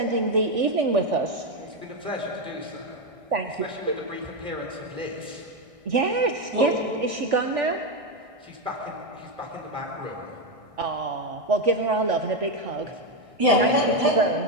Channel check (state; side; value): late; left; 1.6 ms